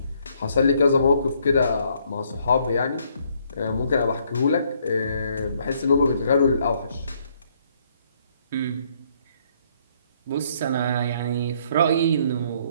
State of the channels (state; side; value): inverted; both; correlation -0.68